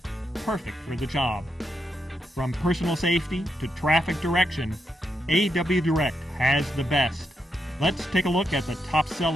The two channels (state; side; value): normal; both; correlation 0.83